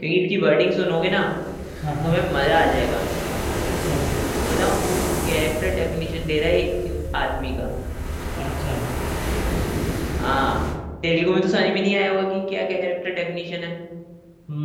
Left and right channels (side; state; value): both; identical; correlation 1.00